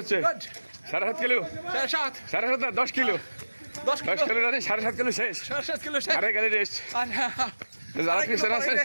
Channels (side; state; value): both; inverted; correlation -1.00